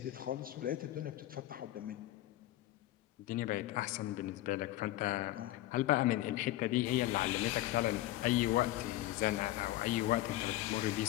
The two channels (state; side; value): quieter; right; 15.8 dB